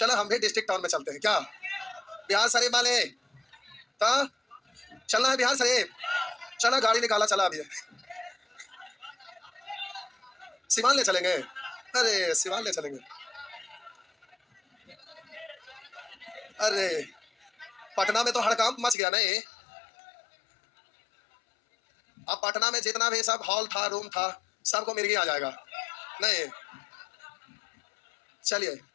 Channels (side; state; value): right; drops out; at 18.9 s